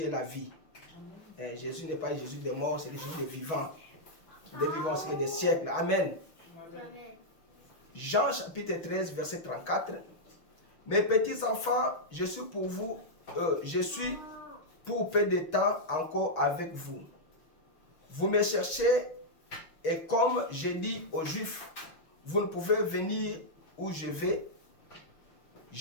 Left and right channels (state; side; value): late; right; 6.2 ms